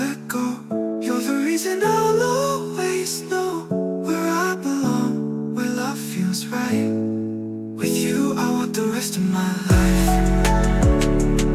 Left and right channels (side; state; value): both; identical; correlation 1.00